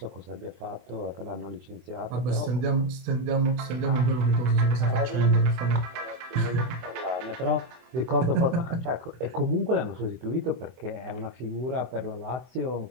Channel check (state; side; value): late; left; 24 ms